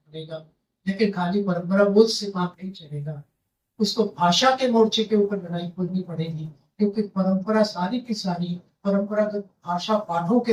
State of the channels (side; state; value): both; identical; correlation 1.00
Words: लेकिन खाली परंपरा बोध से काम नहीं चलेगा, उसको भाषा के मोर्चे के ऊपर लड़ाई खोलनी पड़ेगी, क्योंकि परंपरा सारी की सारी परंपरागत भाषा पाठों के